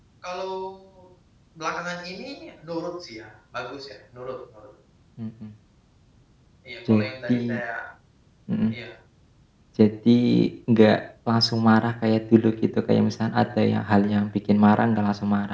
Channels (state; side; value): identical; both; correlation 1.00